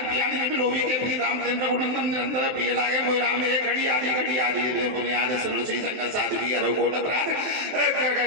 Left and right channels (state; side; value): late; left; 23 ms